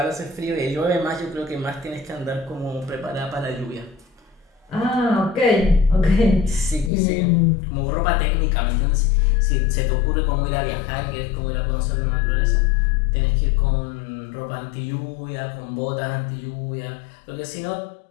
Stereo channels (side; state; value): right; drops out; at 6.9 s